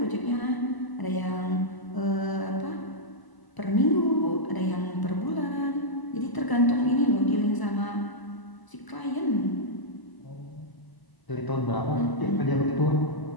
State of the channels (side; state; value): right; late; 1.0 ms